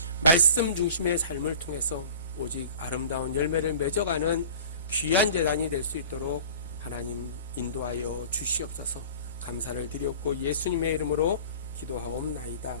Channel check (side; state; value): both; inverted; correlation -0.42